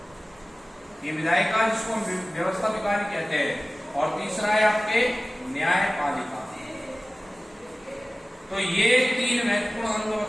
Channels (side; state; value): both; normal; correlation 0.97